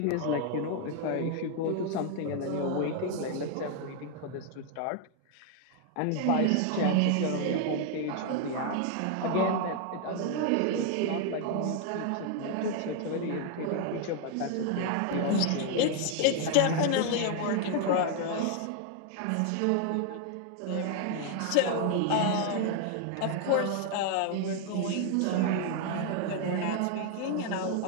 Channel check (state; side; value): different; both; correlation 0.00